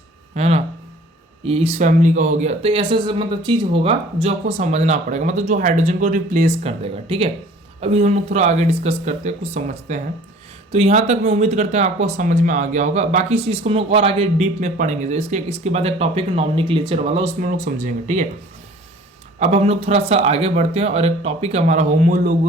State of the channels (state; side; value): normal; both; correlation 0.49